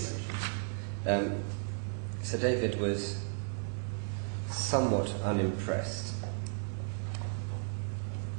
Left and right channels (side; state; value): left; silent; digital silence